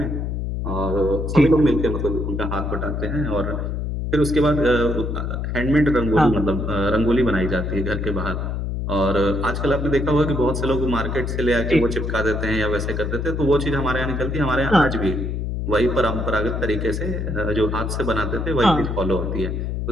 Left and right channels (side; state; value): left; noise; hum, 2 dB below the sound